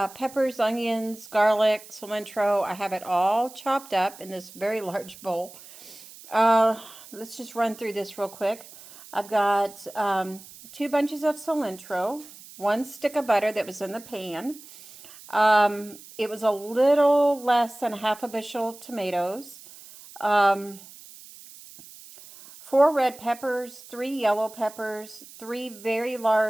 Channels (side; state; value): right; noise; hiss, 19 dB below the sound